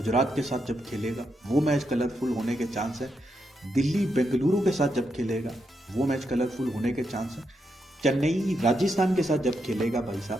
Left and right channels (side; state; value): both; normal; correlation 0.82